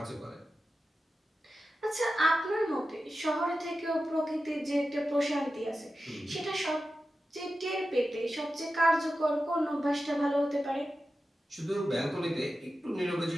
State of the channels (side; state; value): both; normal; correlation 0.92